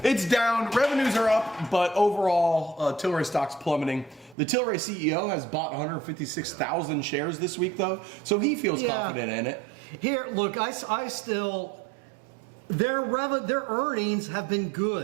It's down. Revenues are up, but overall, Tilray stock's plummeting. The Tilray CEO has bought 156,000 shares this week, though, so he feels confident in it. Here, look, I still their earnings have been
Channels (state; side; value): drops out; left; at 4.4 s